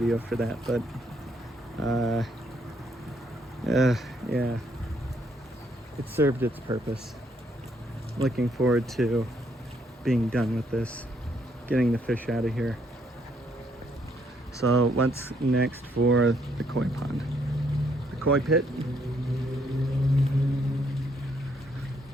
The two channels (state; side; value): normal; both; correlation 0.71